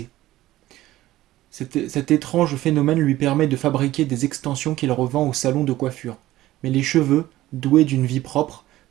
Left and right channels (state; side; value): quieter; left; 15.7 dB